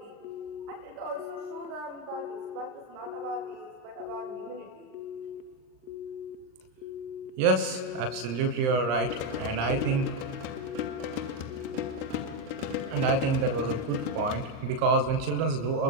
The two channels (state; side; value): late; left; 39 ms